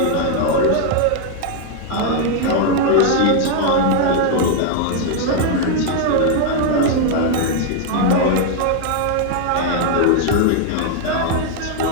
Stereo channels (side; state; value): both; different; correlation 0.00